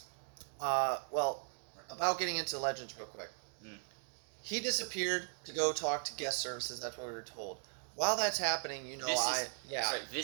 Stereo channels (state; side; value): silent; left; 52 dB below the other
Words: About getting into Legends real quick. He disappeared to go talk to guest services, that's what we were told. While that's happening,